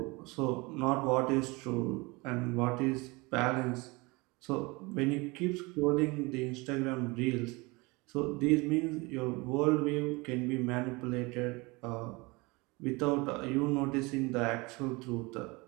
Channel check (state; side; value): quieter; left; 25.3 dB